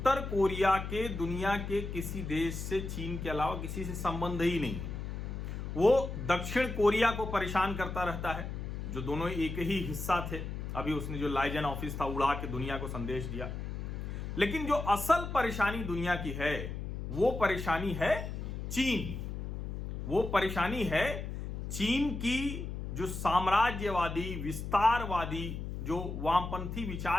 कोरिया के दुनिया के किसी देश से, चीन के अलावा किसी से संबंध ही नहीं है। वो दक्षिण कोरिया को परेशान करता रहता है, जो दोनों एक ही हिस्सा थे। अभी उसने जो लाइजन ऑफिस था उड़ा के दुनिया को संदेश दिया। लेकिन जो असल परेशानी दुनिया की है वो परेशानी है चीन। वो परेशानी है चीन की जो साम्राज्यवादी, विस्तारवादी, जो वामपंथी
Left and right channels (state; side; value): noise; left; hum, 6 dB below the sound